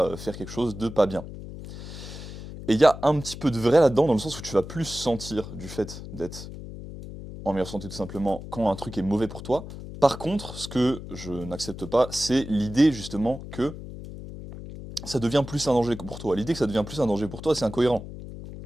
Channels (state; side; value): noise; left; hum, 11 dB below the sound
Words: faire quelque chose de pas bien. Et il y a un petit peu de vrai là-dedans, dans le sens où tu vas plus sentir du fait d'être en meilleure santé tout simplement quand un truc est mauvais pour toi. Par contre, ce que je n'accepte pas, c'est l'idée justement que ça devient plus un danger pour toi. L'idée que ça devient plus un danger pour toi, c'est incohérent.